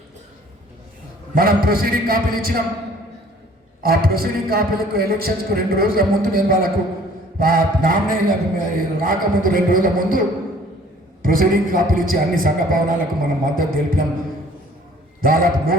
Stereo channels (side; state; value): both; normal; correlation 0.54